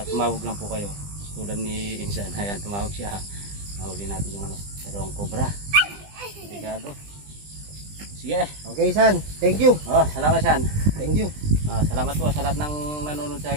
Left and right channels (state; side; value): late; left; 20 ms